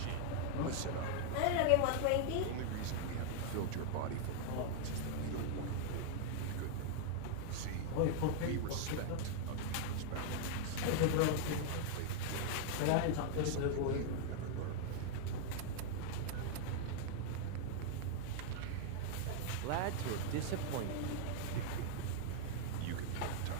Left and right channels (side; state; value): both; different; correlation 0.00